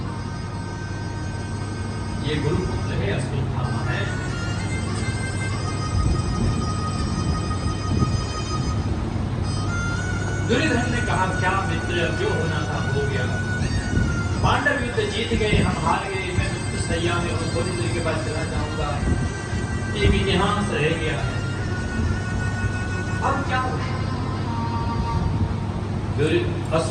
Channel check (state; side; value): identical; both; correlation 1.00